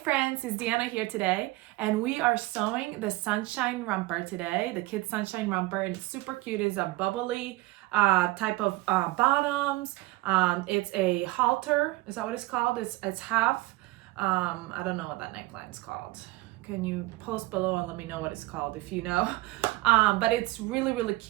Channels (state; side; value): quieter; left; 20.3 dB